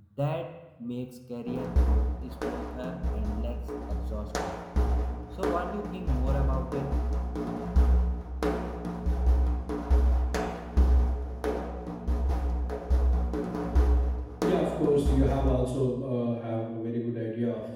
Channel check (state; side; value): identical; both; correlation 1.00